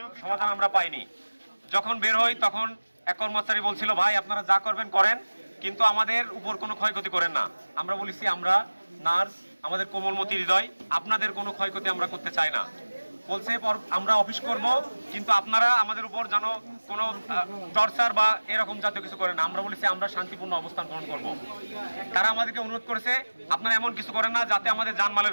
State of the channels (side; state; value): both; inverted; correlation -1.00